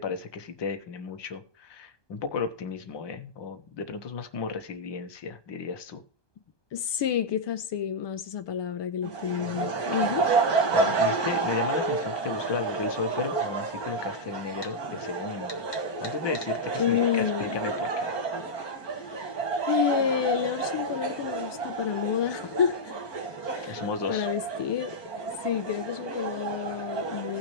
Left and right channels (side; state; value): right; late; 1.2 ms